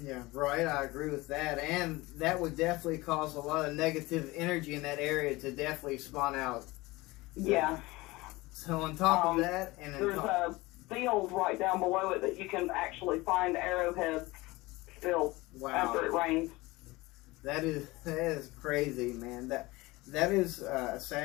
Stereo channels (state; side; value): quieter; right; 21.3 dB